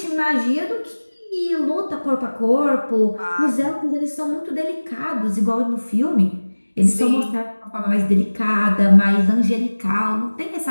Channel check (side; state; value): both; inverted; correlation -1.00